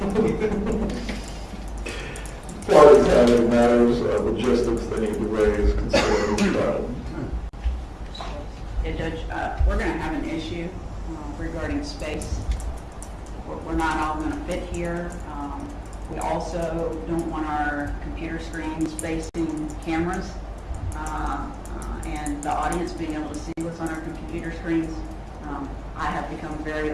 Parties having matters of logistics they need to raise considering the trial. Yeah, Judge, we're going to have an issue regarding space. We're not all going to fit here. We also don't want our computer screens facing cameras and the audience being able to see what's on our computer screens. I have become very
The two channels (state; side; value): identical; both; correlation 1.00